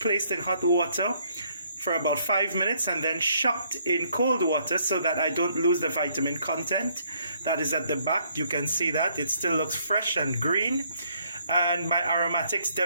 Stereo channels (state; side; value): inverted; both; correlation -0.67